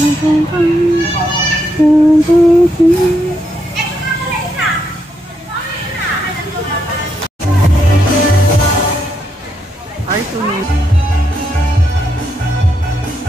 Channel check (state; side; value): normal; both; correlation 0.79